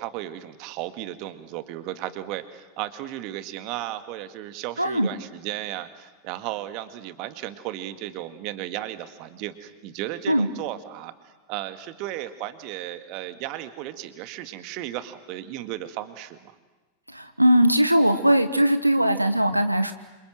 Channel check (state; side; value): inverted; both; correlation -0.79